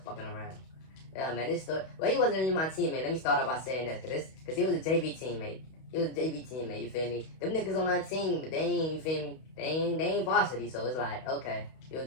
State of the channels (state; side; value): late; right; 31 ms